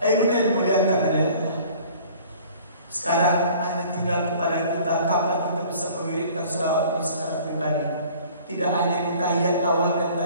muliakan Allah. Sekarang hanya tinggal kepada kita kapan kita bisa mewiridkan selawat ini secara pribadi. Tidak hanya di tahiyat awal dan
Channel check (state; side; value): inverted; both; correlation -0.50